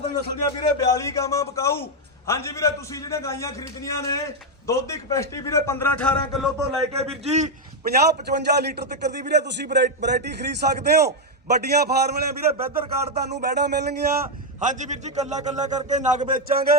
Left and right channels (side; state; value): both; normal; correlation 0.03